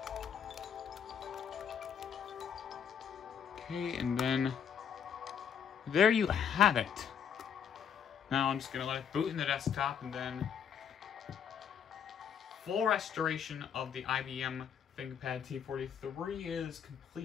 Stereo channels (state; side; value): quieter; right; 8.0 dB